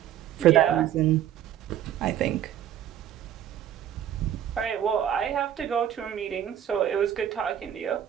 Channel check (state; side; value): quieter; left; 10.7 dB